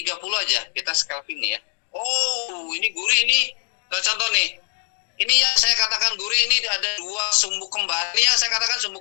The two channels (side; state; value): right; silent; digital silence